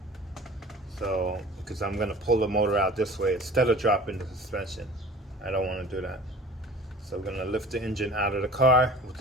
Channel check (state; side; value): normal; both; correlation 0.42